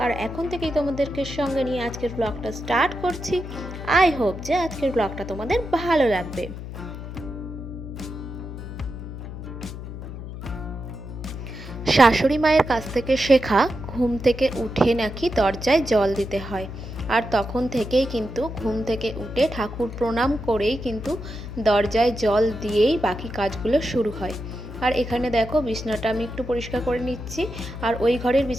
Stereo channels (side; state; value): left; noise; hum, 9 dB below the sound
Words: আর এখন থেকেই তোমাদেরকে সঙ্গে নিয়ে আজকের ব্লগটা স্টার্ট করছি। আই হোপ যে আজকের ব্লগটা তোমাদের ভালো লাগবে। শাশুড়ি মায়ের কাছ থেকে শেখা ঘুম থেকে উঠে নাকি দরজায় জল দিতে হয়। আর তখন থেকেই কিন্তু ঘুম থেকে উঠে ঠাকুর প্রণাম করেই কিন্তু দরজায় জল দিয়েই বাকি কাজগুলো শুরু হয়। আর এখানে দেখো বিছানাটা আমি একটু পরিষ্কার করে নিচ্ছি। আর ওই ঘরের